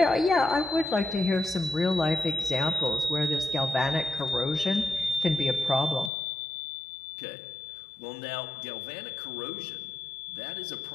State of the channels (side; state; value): right; drops out; at 6.1 s